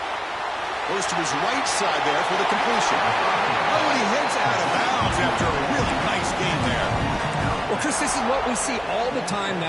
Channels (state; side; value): identical; both; correlation 1.00